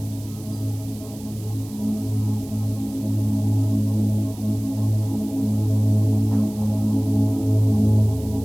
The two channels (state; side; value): noise; right; hiss, 20 dB below the sound